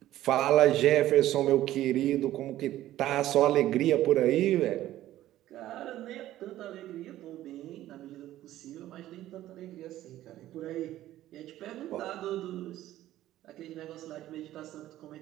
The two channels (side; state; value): left; quieter; 14.0 dB